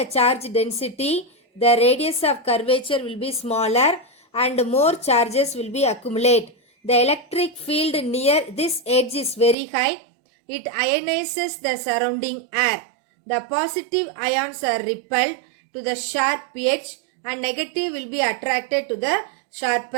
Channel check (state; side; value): drops out; left; at 9.6 s